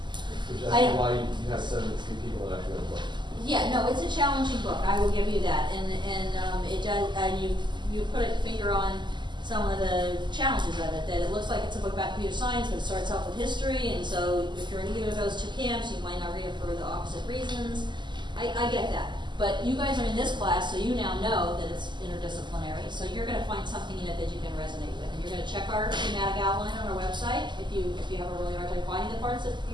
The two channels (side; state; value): left; late; 0.22 ms